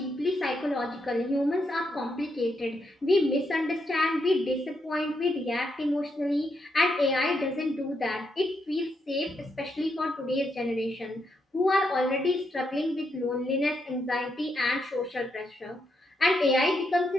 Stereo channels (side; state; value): both; normal; correlation 0.80